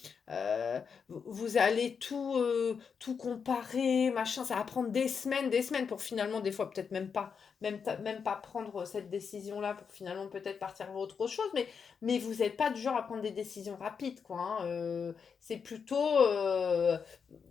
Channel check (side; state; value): right; quieter; 6.2 dB